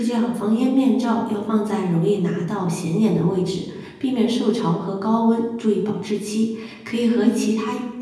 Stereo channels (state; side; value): identical; both; correlation 1.00